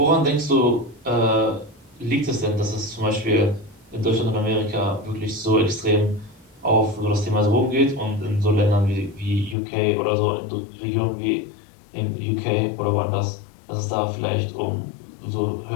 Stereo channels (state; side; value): drops out; right; at 9.6 s